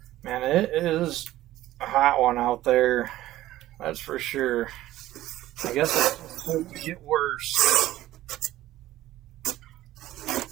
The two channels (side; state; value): left; quieter; 15.0 dB